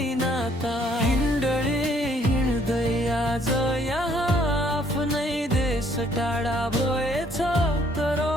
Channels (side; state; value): both; normal; correlation 0.64